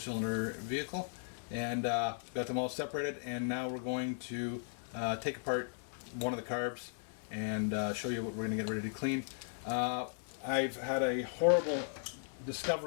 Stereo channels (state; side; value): silent; right; 53 dB below the other